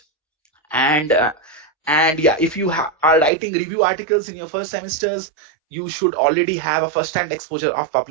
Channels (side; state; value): left; drops out; at 3.3 s